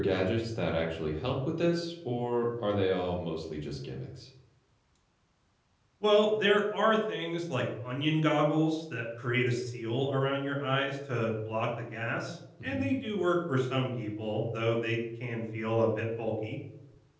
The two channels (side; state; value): both; identical; correlation 1.00